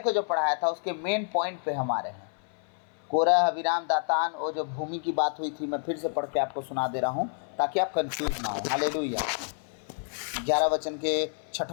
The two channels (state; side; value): silent; right; 56 dB below the other